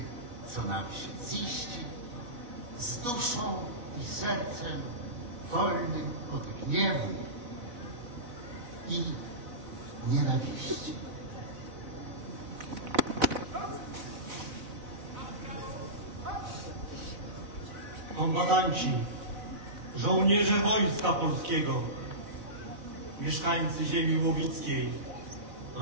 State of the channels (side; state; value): left; late; 4.0 ms